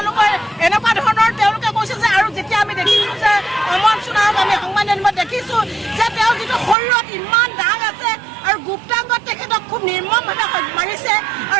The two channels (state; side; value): drops out; left; at 6.8 s